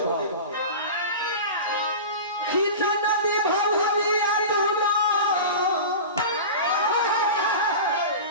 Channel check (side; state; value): both; inverted; correlation -0.30